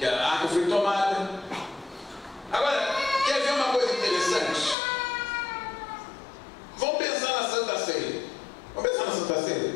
a arca foi tomada. Agora, quer ver uma coisa interessante? Vamos pensar na Santa Ceia. Vamos pensar na Santa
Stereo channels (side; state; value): right; drops out; at 4.8 s